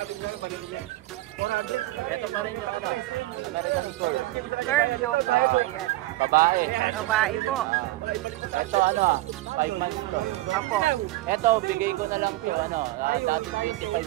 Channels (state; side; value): quieter; left; 18.2 dB